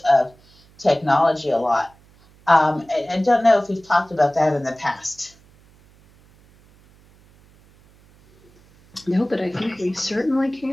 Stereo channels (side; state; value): right; noise; hum, 29 dB below the sound